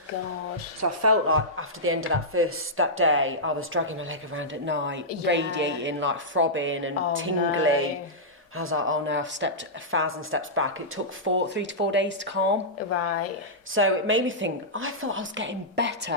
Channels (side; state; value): both; normal; correlation -0.13